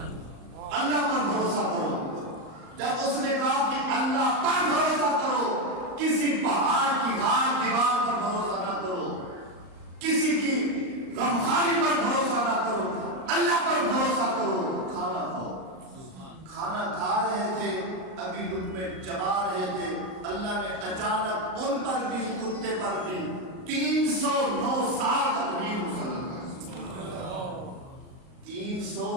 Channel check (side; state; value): left; late; 38 ms